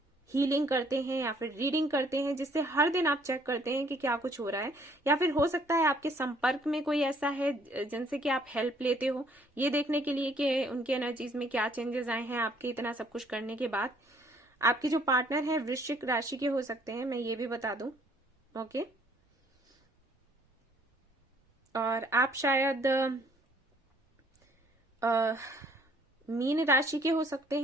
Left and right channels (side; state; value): both; normal; correlation 0.62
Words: हीलिंग करते हैं या फिर रीडिंग करते हैं, जिससे हर दिन आप चेक करते हैं कि क्या कुछ हो रहा है। या फिर हो सकता है आपके संपर्क में कोई ऐसा है जिनसे कि आप हेल्प लेते हो, ये देखने के लिए कि उनकी एनर्जीज में क्या चेंजेस आए हैं आपके इतना सब कुछ करने के बाद। आपके जो पार्टनर है वृश्चिक राशि के हो सकते हैं, मैं ये भी बता दूं, ओके। और आप शायद मीन राशि के हो सकते